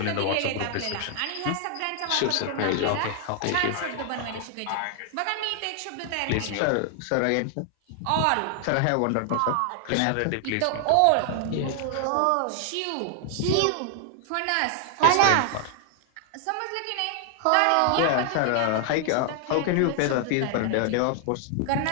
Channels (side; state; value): both; different; correlation 0.00